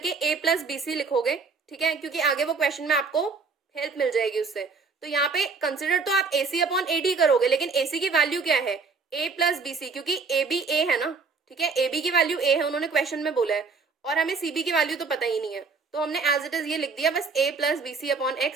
A प्लस BC लिखोगे, ठीक है, क्योंकि आगे वो क्वेश्चन में आपको हेल्प मिल जाएगी उससे। तो यहाँ पे कंसिडर तो आप AC अपॉन AD करोगे, लेकिन AC की वैल्यू क्या है, A प्लस BC, क्योंकि AB A है ना, ठीक है, AB की वैल्यू A है, उन्होंने क्वेश्चन में बोला है, और हमें CB की वैल्यू तो पता ही नहीं है, तो हमने एज इट इज ये लिख दिया बस A plus BC upon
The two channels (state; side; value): quieter; left; 4.7 dB